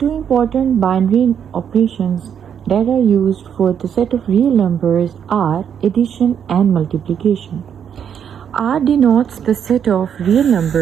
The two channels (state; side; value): quieter; left; 8.3 dB